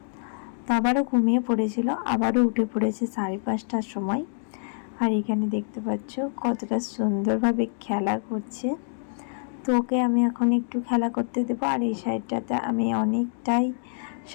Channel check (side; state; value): right; silent; digital silence